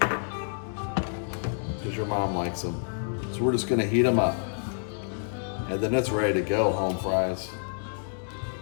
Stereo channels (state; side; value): silent; right; digital silence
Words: because your mom likes them. So we're just gonna heat them up, and then it's ready to go. Home fries.